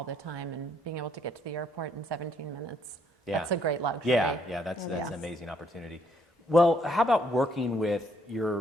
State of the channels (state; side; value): normal; both; correlation 0.70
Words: the time, and being able to get to the airport in 17 minutes. Yeah. That's a great luxury. Yeah, that's an amazing opportunity. Well, how about working with